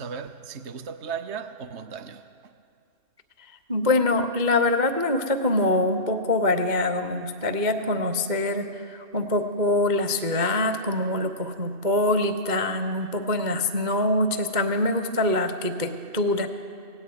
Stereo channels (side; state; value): left; late; 2.2 ms